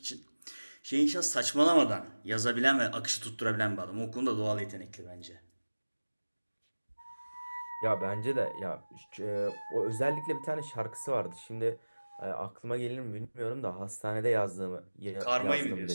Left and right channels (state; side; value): inverted; both; correlation -1.00